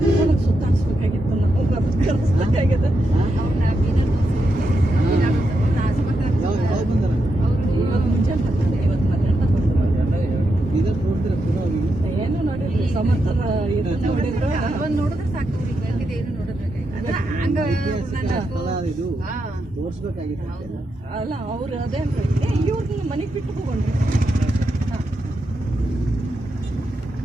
ಸುತ್ತಾಡಿಸ್ಬೇಕಾಗಿತ್ತು ನಾವು ಕಲಿಸ್ಬೇಕಾಗಿದೆ ಅವ್ರನ್ನ ಬೀದರ್ ಇವಾಗ ಮುಂಜಾನೆ ಬರ್ತಾರೆ, ಇವತ್ತು ಮಧ್ಯಾಹ್ನ ಏನು ನೋಡಿರಿ ಸಮರ್ಥನ ನೋಡಿದ್ರು ಒಂದು ನೋಡಿದ್ರೆ ಸಾಕು ಅವ್ರಿಗೆ ಬೇಕಿದೆ ಏನು ನೋಡೋದ್ಬೇಕಾಗಿತ್ತು ಅಲ್ಲ ಅವ್ರು ಅದೇನ್ರಿ ಇವ್ರನ್ನ ಮನೆಗೆ ಬಿಟ್ಟು ಹೋಗೋಣ್ರಿ.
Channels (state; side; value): normal; both; correlation 0.85